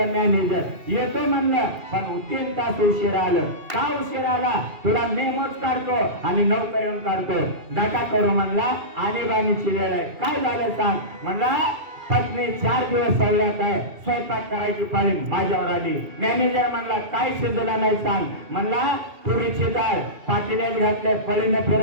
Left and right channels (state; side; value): late; left; 2.8 ms